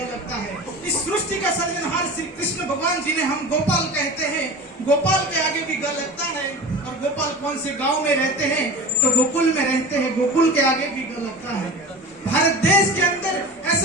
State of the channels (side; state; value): both; normal; correlation 0.33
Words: लगता है। इस सृष्टि का सर्जनहार श्री कृष्ण भगवान जी ने हम गोपाल कहते हैं, गोपाल के आगे भी ग लगता है। और गोपाल कौन से गांव में रहते हैं तो गोकुल में रहते हैं, गोकुल के आगे भी ग लगता है। भारत देश के अंदर